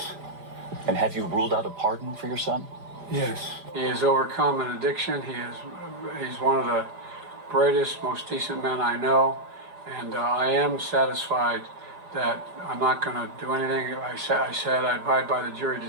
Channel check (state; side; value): late; left; 5.0 ms